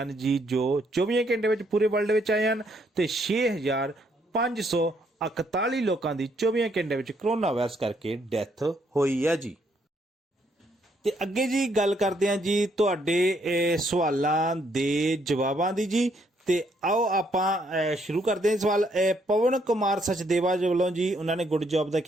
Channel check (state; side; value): normal; both; correlation 0.71